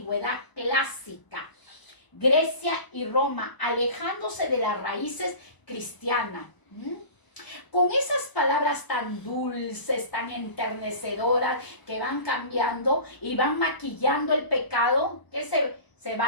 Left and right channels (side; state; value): right; late; 1.0 ms